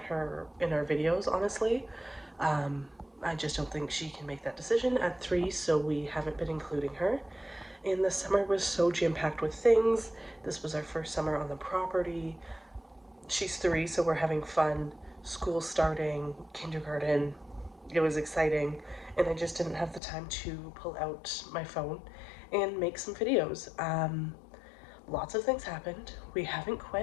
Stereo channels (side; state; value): right; drops out; at 20.0 s